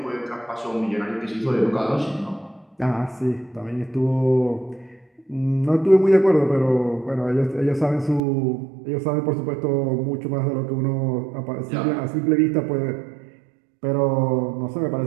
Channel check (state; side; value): drops out; left; at 8.2 s